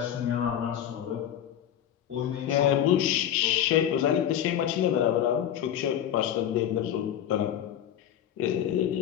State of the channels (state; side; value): quieter; right; 10.4 dB